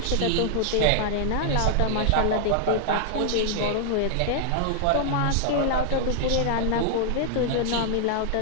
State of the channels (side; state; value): both; different; correlation -0.01